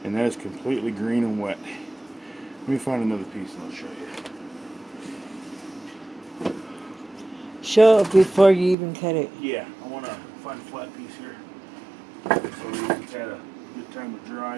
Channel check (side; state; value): left; drops out; at 8.8 s